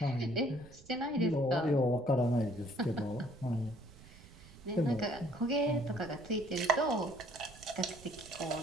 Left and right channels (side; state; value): right; noise; rumble, 21 dB below the sound